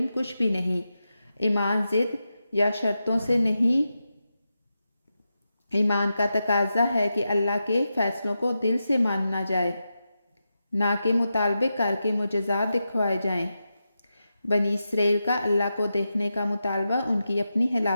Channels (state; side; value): inverted; both; correlation -0.89